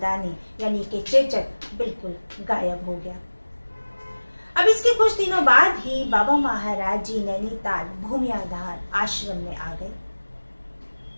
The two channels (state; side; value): inverted; both; correlation -1.00